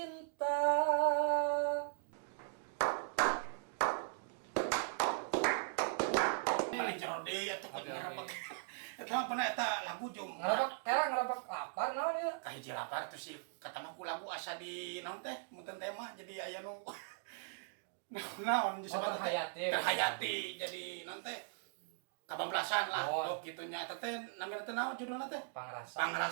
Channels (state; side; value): silent; left; digital silence